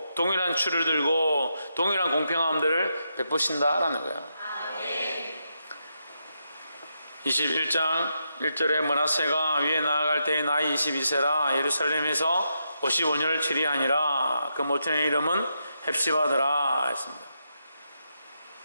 동일한 추를 들고 동일한 공평함들을 베푸신다라는 거예요. 21장 1절에 므낫세가 위에 나아갈 때의 나이 22세라 예루살렘에서 55년을 치리하니라. 그 모친의 이름은 헵시바더라 했습니다.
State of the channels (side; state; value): both; inverted; correlation -0.83